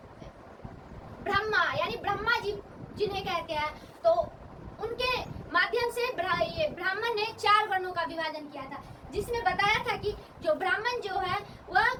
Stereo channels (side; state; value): both; identical; correlation 1.00